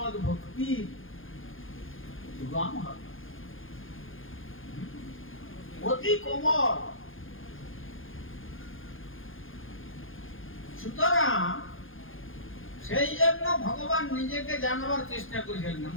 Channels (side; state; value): right; late; 0.59 ms